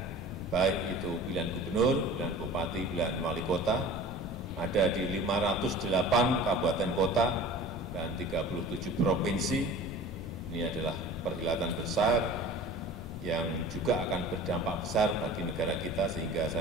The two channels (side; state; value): both; normal; correlation 0.41